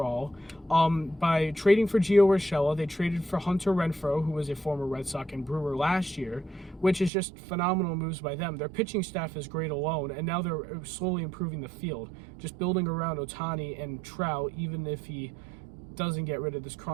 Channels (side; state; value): left; drops out; at 7.1 s